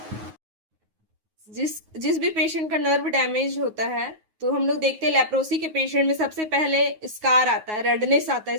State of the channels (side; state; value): left; late; 9.4 ms